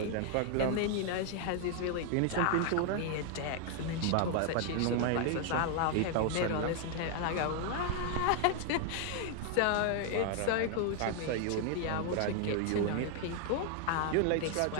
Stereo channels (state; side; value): different; both; correlation 0.00